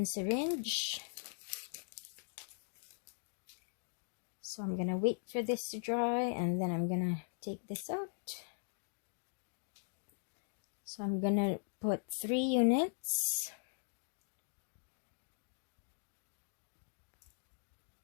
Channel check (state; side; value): silent; right; digital silence